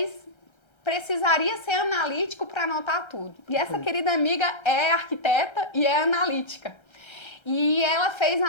precisaria ser analítico para anotar tudo. E essa querida amiga é arquiteta e é analítica. E ela fez a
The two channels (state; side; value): late; right; 1.3 ms